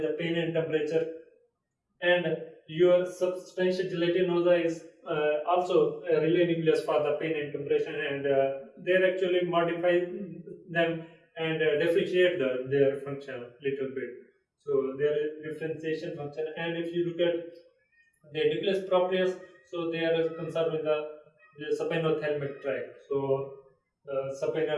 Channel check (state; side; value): identical; both; correlation 1.00